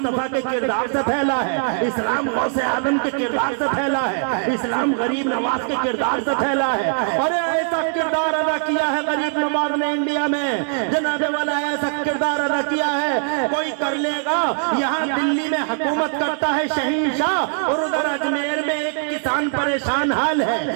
के किरदार से फैला है। इस्लाम गौसे आदम के किरदार से फैला है। इस्लाम गरीब नवाज के किरदार से फैला है। अरे ऐसा किरदार अदा किया है गरीब नवाज ने इंडिया में, जनाबे वाला ऐसा किरदार अदा किया है कोई कर लेगा। यहाँ दिल्ली में हुकूमत करता है शहंशाह, और उधर अजमेर में एक किसान परेशान हाल है।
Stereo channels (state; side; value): silent; left; 62 dB below the other